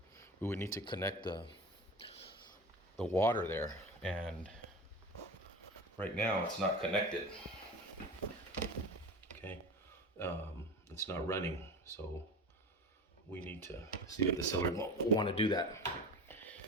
connect the water there, and Right now it's not connected. Okay, it's not running, so we need to see if the seller will want to do that.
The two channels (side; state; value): both; normal; correlation 0.31